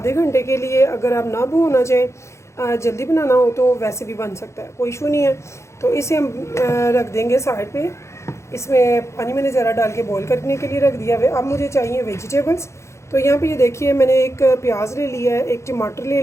घंटे के लिए। अगर आप ना भिगोना चाहें, जल्दी बनाना हो तो वैसे भी बन सकता है, कोई इशू नहीं है। तो इसे हम रख देंगे साइड पे। इसमें पानी मैंने ज़रा डाल के बॉईल करने के लिए रख दिया है। अब मुझे चाहिए वेजिटेबल्स। तो यहाँ पे ये देखिए, मैंने एक प्याज ले लिया है, एक टमाटर ले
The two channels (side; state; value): right; late; 0.14 ms